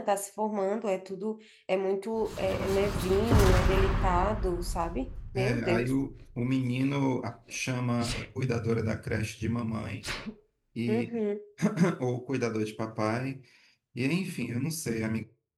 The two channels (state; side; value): identical; both; correlation 1.00